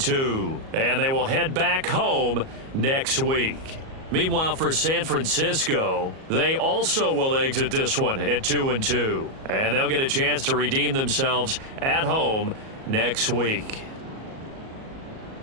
And they will head back home next week. Meanwhile, for San Francisco, they also will exit this one at 2-2. And they'll get a chance to redeem themselves at home next week.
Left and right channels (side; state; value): left; late; 37 ms